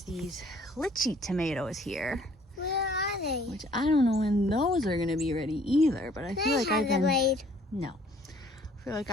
these lychee tomatoes here, Where are they? which I don't know when those are going to be ready either, but I feel like I've been... wait. No. I feel like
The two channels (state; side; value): normal; both; correlation 0.58